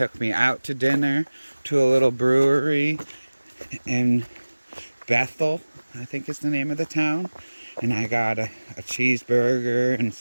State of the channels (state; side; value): inverted; both; correlation -1.00